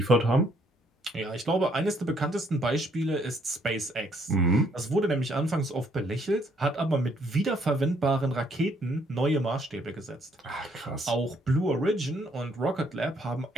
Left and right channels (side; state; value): both; normal; correlation 0.67